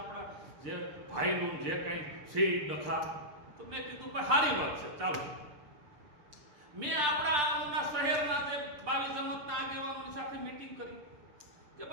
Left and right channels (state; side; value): late; left; 6.8 ms